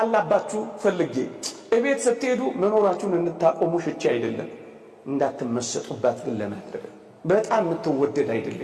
ፈልጌ እቤት ስትሄዱ መኖራችሁን እንድታቆሙ ሽቼ አይደለም፣ እንዳትመሰጡባት ግን ለማድረግ በጣም የምትወደድ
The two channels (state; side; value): identical; both; correlation 1.00